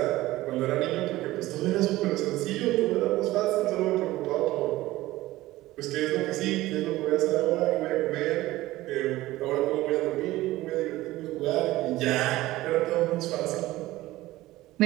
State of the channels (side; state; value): left; quieter; 17.2 dB